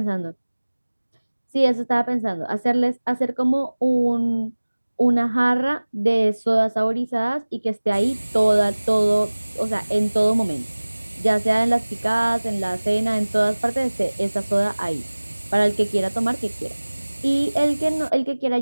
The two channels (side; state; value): both; inverted; correlation -1.00